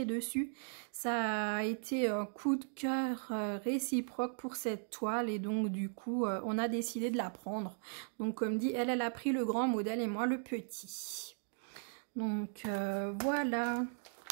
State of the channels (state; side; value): silent; left; 53 dB below the other